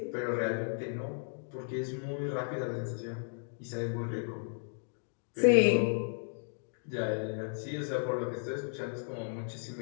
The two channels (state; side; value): silent; right; digital silence